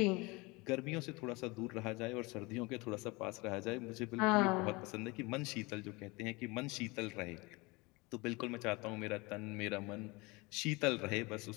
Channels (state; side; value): quieter; right; 25.1 dB